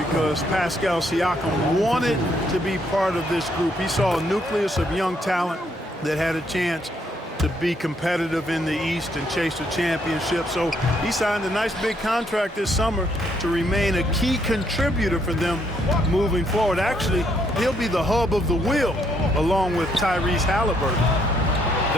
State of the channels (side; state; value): both; normal; correlation 0.72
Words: Pascal Siakam wanted to be part of this group. He saw a nucleus of young talent that had a chance to be competitive in the East and chase a championship. So he signed a nice big contract this summer to remain a key contributor for them moving forward. Actually, he'll be the hub of the wheel along with Tyrese Halliburton.